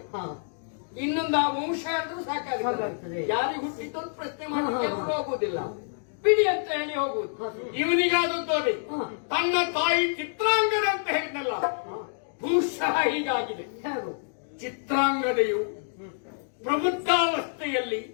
ಇನ್ನೊಂದು ಆ ವಂಶ ಅಂದ್ರೂ ಸಾಕಾಗ್ತದೆ. ಯಾರಿಗೆ ಹುಟ್ಟಿದ್ದು ಅಂತ ಪ್ರಶ್ನೆ ಮಾಡಲಿಕ್ಕೆ ಹೋಗುವುದಿಲ್ಲ. ಬಿಡಿ ಅಂತ ಹೇಳಿ ಹೋಗುವುದು. ಇವನಿಗಾದದ್ದು ಅದೇ. ಹ. ತನ್ನ ತಾಯಿ ಚಿತ್ರಾಂಗದ ಅಂತ ಹೇಳಿದ್ನಲ್ಲ, ಬಹುಶಃ ಹೀಗಾಗಿದೆ. ಹೇಗೂ? ಚಿತ್ರಾಂಗದೆಯು ಪ್ರಬುದ್ಧಾವಸ್ಥೆಯಲ್ಲಿ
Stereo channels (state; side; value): silent; right; digital silence